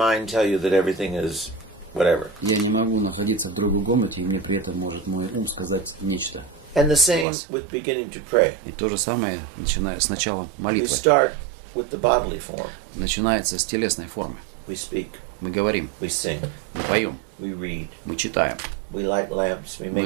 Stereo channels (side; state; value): left; drops out; at 7.2 s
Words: tell you that everything is whatever. Я не могу находиться в другой комнате, и мне при этом может мой ум сказать нечто. And the same with beginning to pray. И то же самое, начиная с начала We молитвы, start with the bodily form. начинается с телесной формы. We speak, Мы говорим, we sing, мы поем, we read, мы читаем, we light lamps, we мы